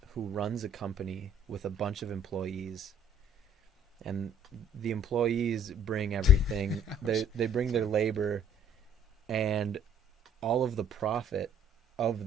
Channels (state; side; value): normal; both; correlation 0.57